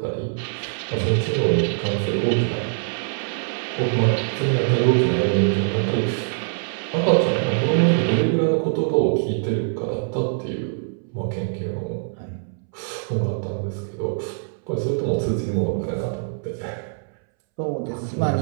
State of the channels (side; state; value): left; silent; 63 dB below the other